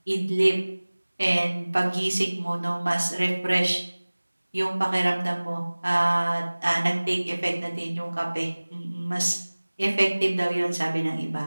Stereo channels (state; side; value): inverted; both; correlation -1.00